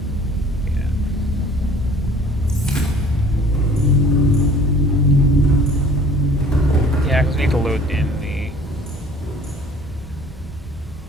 Yeah, because we need to load in the.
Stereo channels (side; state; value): both; normal; correlation 0.52